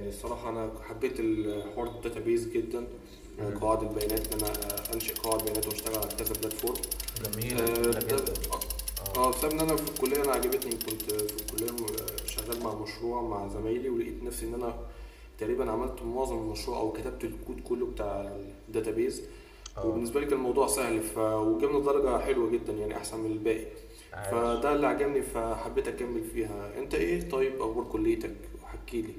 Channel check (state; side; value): identical; both; correlation 1.00